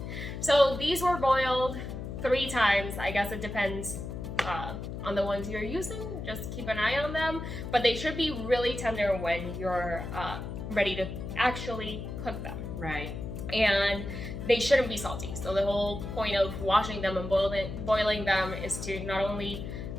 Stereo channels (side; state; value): left; noise; hum, 7 dB below the sound